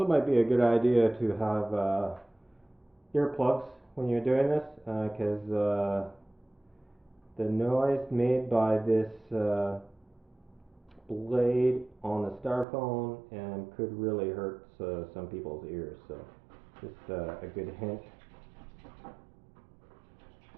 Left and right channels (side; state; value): left; drops out; at 12.7 s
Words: might be a good idea to have earplugs when you're doing this, because the noise made by this blade on the styrofoam could really hurt some people's ears. So just a good hint.